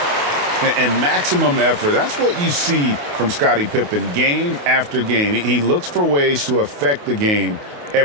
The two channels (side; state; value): left; late; 28 ms